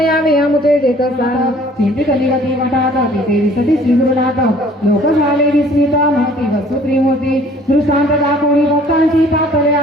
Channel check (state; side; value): normal; both; correlation 0.55